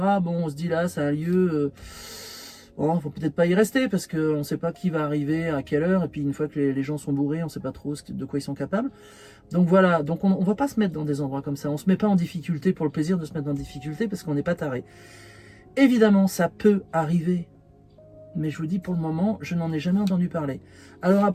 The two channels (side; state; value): both; identical; correlation 1.00